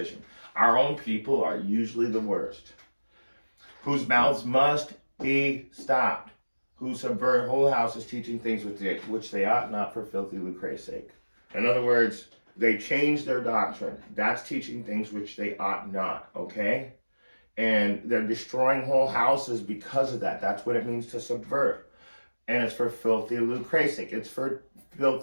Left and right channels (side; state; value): both; inverted; correlation -1.00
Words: Our own people are usually the worst, whose mouths must be stopped, who subvert whole houses, teaching things which they ought not, for filthy lucre's sake. In other words, they change their doctrine. That's teaching things which they ought not, okay? And they're destroying whole houses because of that. That's what it means to subvert. And it's for filthy lucre's sake. It's for